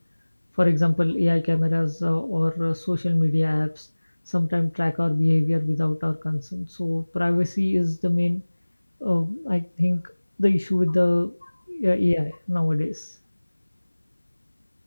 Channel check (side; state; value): both; inverted; correlation -1.00